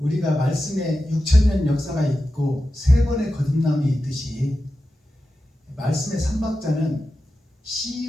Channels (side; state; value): both; normal; correlation 0.92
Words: 말씀에 6,000년 역사가 있고 세 번의 거듭남이 있듯이 말씀의 삼박자는